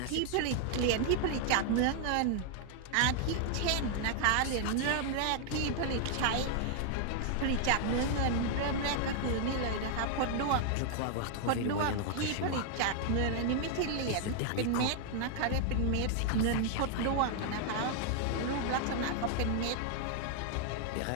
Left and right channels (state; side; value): different; both; correlation 0.00